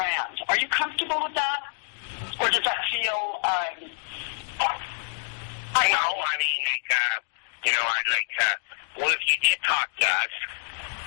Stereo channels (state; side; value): silent; right; digital silence